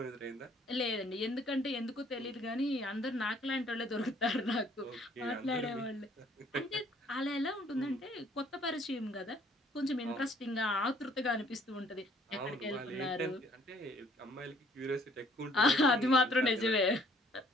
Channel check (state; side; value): normal; both; correlation 0.61